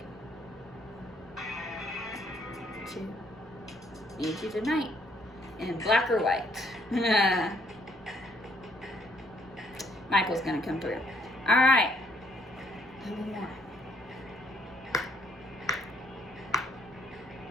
it. 2. Need you tonight. In black or white. Michael's gonna come through. All right. One more.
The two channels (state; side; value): normal; both; correlation 0.67